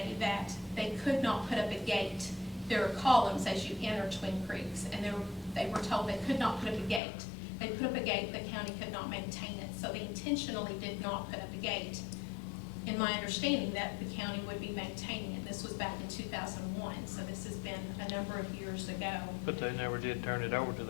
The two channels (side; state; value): right; drops out; at 7.0 s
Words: that they could not put up a gate. There are columns as you enter Twin Creeks, and they were told they could not put up a gate. They put up a gate, the county could not maintain it, so they intentionally did not put up a gate. In my understanding, that the county would be maintaining it. This was back in 2001, so this has been a number of years ago. But they never did turn it over to